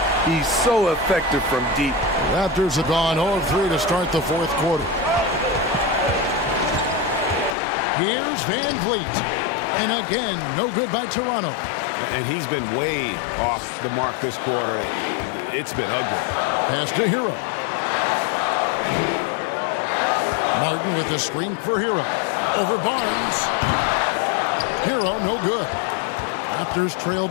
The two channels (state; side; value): drops out; right; at 7.5 s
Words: He's so effective from deep. Raptors have gone 0-3 to start the fourth quarter. Here's Van Vliet. And again, no good by Toronto. And he's been way off the mark this quarter. It's been ugly. Pass to Hero. Martin with the screen for Hero. Over Barnes. Hero, no good. Raptors trail